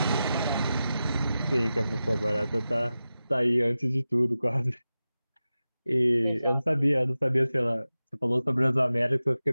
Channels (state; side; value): inverted; both; correlation -0.94